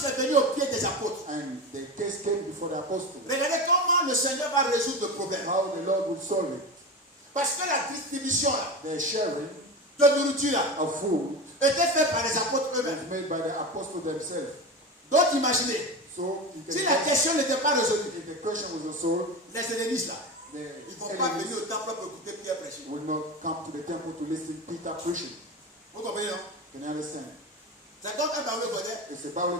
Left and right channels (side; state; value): both; normal; correlation 0.24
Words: est venue au pied des apôtres. And the case came before the apostles. Regardez comment le Seigneur va résoudre le problème. How the Lord will solve it. Parce que la distribution là, The sharing de nourriture là, of food était faite par les apôtres was eux-mêmes. made by the apostles themselves. Donc imaginez, So you can si la question n'était pas résolue, if the question was solved, les hellénistes là, Ils ne vont pas venir au temple pour écouter Pierre prêcher. will not come to the temple to listen to Peter preaching. Vous comprenez, non? Can you understand? C'est comme un barreau godé. It's a